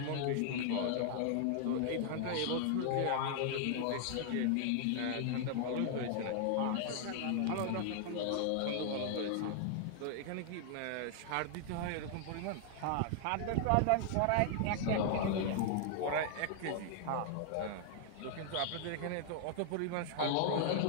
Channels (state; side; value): different; both; correlation 0.00